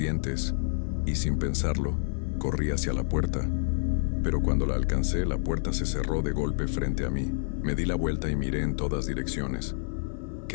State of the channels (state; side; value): silent; right; digital silence